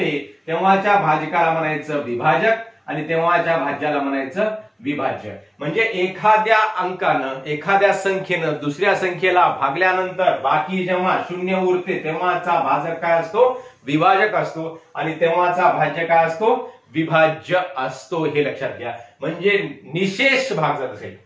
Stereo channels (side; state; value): both; identical; correlation 1.00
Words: तेव्हाच्या भाजकाला म्हणायचं विभाजक आणि तेव्हाच्या भाज्याला म्हणायचं विभाज्य. म्हणजे एखाद्या अंकानं एखाद्या संख्येनं दुसऱ्या संख्येला भागल्यानंतर बाकी जेव्हा 0 उरते तेव्हाचा भाजक काय असतो? विभाजक असतो आणि तेव्हाचा भाज्य काय असतो? विभाज्य असतो. हे लक्षात घ्या. म्हणजे निशेष भाग जर असेल